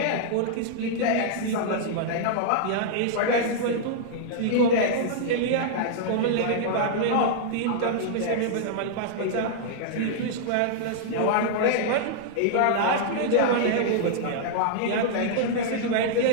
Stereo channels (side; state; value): both; different; correlation -0.01